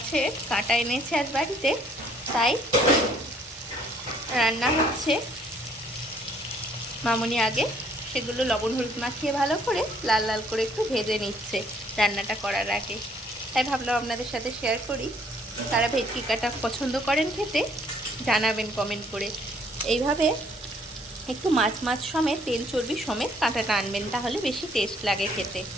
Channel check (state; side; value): normal; both; correlation 0.63